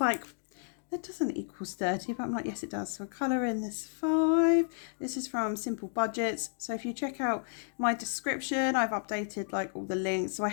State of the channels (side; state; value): right; silent; digital silence